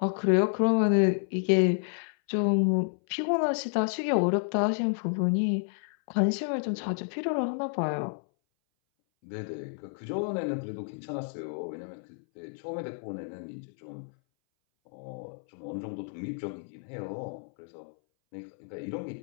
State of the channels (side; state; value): right; silent; 58 dB below the other